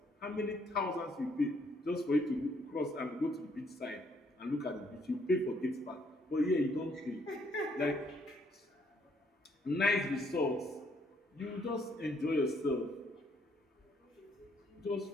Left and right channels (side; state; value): both; normal; correlation 0.68